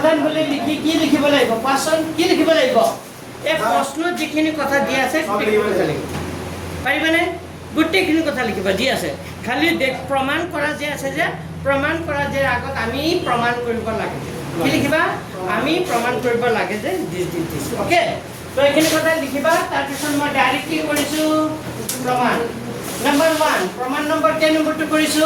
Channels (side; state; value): both; identical; correlation 1.00